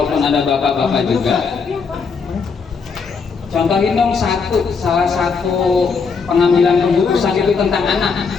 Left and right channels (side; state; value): right; quieter; 5.3 dB